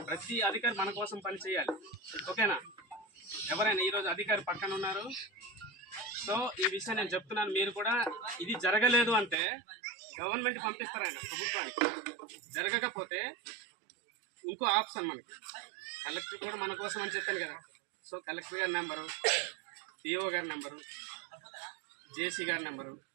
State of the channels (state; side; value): drops out; left; at 9.3 s